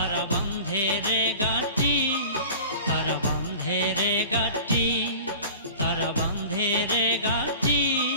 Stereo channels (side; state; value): both; inverted; correlation -0.40